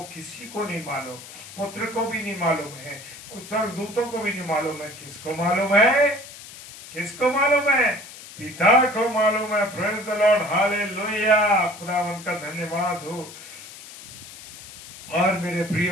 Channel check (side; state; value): left; noise; hiss, 16 dB below the sound